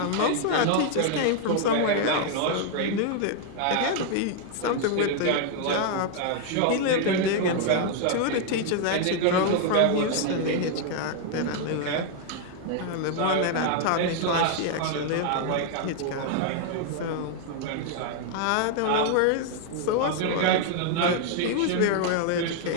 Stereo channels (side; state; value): both; different; correlation 0.00